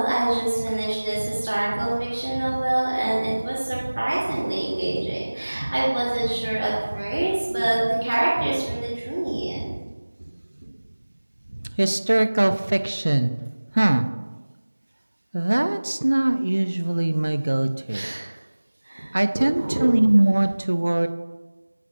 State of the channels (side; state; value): both; inverted; correlation -1.00